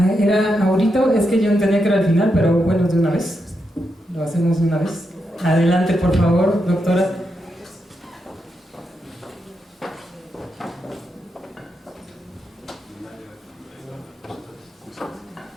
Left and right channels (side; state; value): both; normal; correlation 0.84